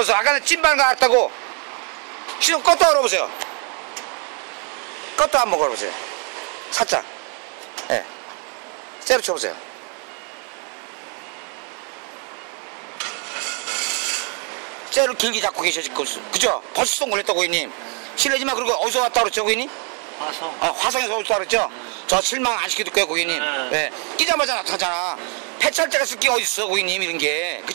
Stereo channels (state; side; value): quieter; left; 38.3 dB